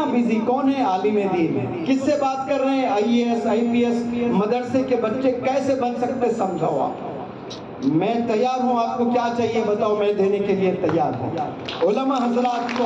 بیزی کون ہے عالم دین, کس سے بات کر رہے ہیں؟ IAS IPS مدرسے کے بچے کیسے بن سکتے سمجھاؤ آپ. میں تیار ہوں, آپ کو کیا چاہیے بتاؤ, میں دینے کے لیے تیار ہوں. علماء حضرات کو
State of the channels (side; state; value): both; identical; correlation 1.00